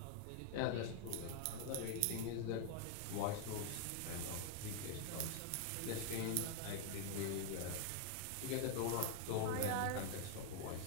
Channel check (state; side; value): different; both; correlation 0.00